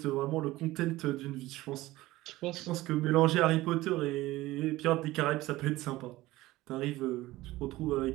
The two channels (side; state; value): left; quieter; 18.0 dB